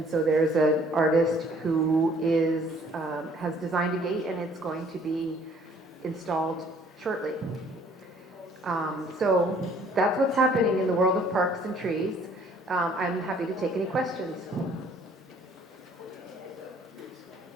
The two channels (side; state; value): both; normal; correlation 0.58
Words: so there's an artist who has designed a gate, and it's going to be installed shortly. So that's what's happening in the world of parks and trees. I'm happy to take any questions.